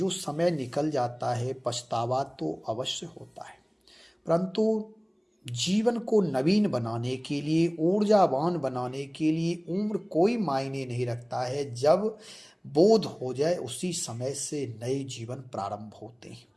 समय निकल जाता है, पछतावा तो अवश्य होता है, परंतु जीवन को नवीन बनाने के लिए, ऊर्जावान बनाने के लिए उम्र कोई मायने नहीं रखता है। जब बोध हो जाए उसी समय से नए जीवन प्रारंभ होते हैं।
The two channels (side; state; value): both; identical; correlation 1.00